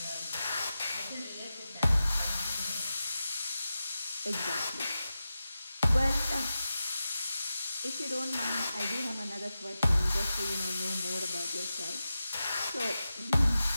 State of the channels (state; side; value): inverted; both; correlation -0.92